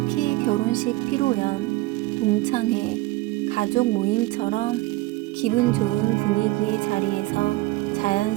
결혼식 피로연, 동창회, 가족 모임처럼 기분 좋은 분위기의 자리에서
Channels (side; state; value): left; quieter; 20.0 dB